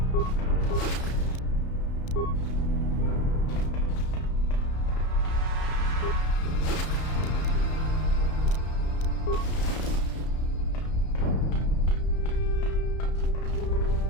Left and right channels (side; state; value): right; late; 33 ms